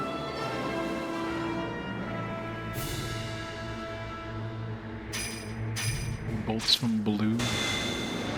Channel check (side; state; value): both; identical; correlation 1.00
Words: bolts from blue.